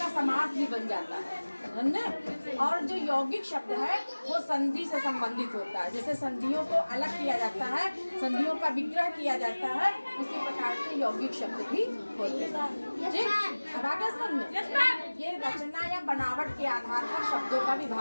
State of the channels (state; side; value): inverted; both; correlation -1.00